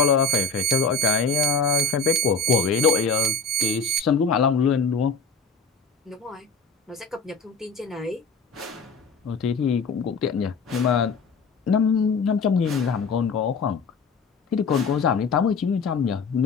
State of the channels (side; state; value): right; quieter; 4.1 dB